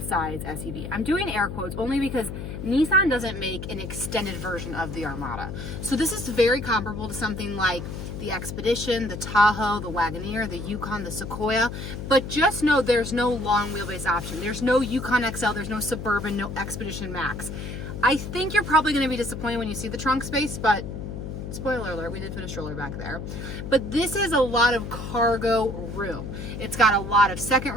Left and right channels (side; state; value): left; noise; hum, 7 dB below the sound